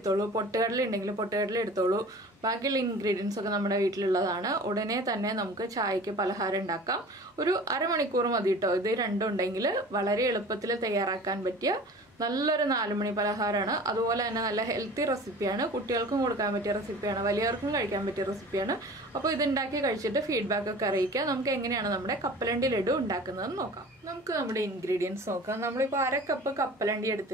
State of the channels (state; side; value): normal; both; correlation 0.41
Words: പൊട്ടുകടല ഉണ്ടെങ്കിൽ പൊട്ടുകടല എടുത്തോളൂ. ബാക്കിയുള്ള ഇൻഗ്രീഡിയൻസ് ഒക്കെ നമ്മുടെ വീട്ടിലുള്ളതാണ്. ഉടനെ തന്നെ നമുക്ക് ചായക്ക് പലഹാരം ഉണ്ടാക്കാം. ഒരു അരമണിക്കൂർ മതി കേട്ടോ. ഇത് രണ്ടും ഉണ്ടെങ്കിൽ വളരെ എളുപ്പത്തിൽ തയ്യാറാക്കാൻ പറ്റിയ നല്ലൊരു 4 മണി പലഹാരമാണ്. അതുപോലെ തന്നെ നല്ല ഹെൽത്തി റെസിപ്പിയാണ്. കുട്ടികൾക്കും കൊടുക്കാൻ പറ്റിയ റെസിപ്പിയാണ്, വലിയവർക്കും കഴിക്കാൻ പറ്റിയ റെസിപ്പിയാണ്. അപ്പോൾ ഇത് ഉണ്ടാക്കി കഴിച്ചിട്ട് ഫീഡ്ബാക്ക് ഒക്കെ അറിയിക്കുക. നമുക്ക് എങ്ങനെയാണ് നമ്മുടെ കപ്പലണ്ടി ലഡു ഉണ്ടാക്കുന്നതെന്ന് നോക്കാം. നമുക്ക് നമ്മുടെ ഇൻഗ്രീഡിയൻസ് നോക്കാം. നമ്മളിപ്പോൾ 1/2 കപ്പ് കപ്പലണ്ടി